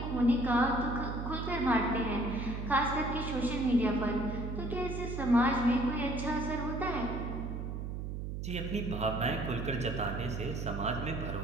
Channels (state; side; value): noise; right; hum, 5 dB below the sound